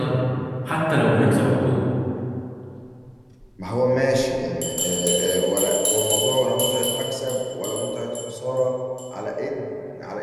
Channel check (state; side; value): identical; both; correlation 1.00